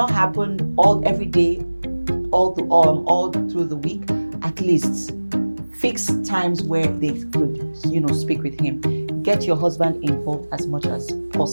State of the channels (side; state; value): both; inverted; correlation -1.00